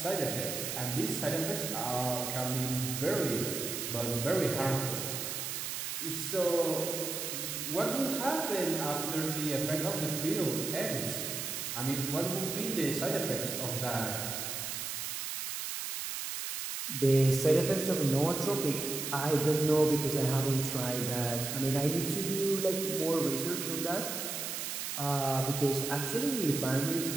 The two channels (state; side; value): noise; right; hiss, 4 dB below the sound